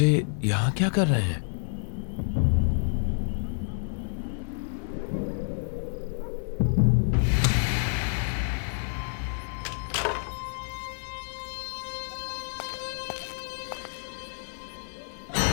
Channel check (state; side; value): silent; right; 56 dB below the other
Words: यहां क्या कर रहे हैं?